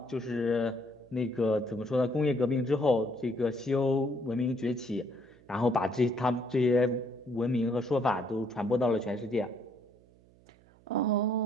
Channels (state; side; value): noise; right; hum, 28 dB below the sound